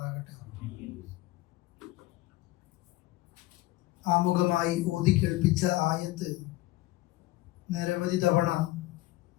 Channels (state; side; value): quieter; right; 18.1 dB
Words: ആമുഖമായി ഓതി കേൾപ്പിച്ച ആയത്ത് നിരവധി തവണ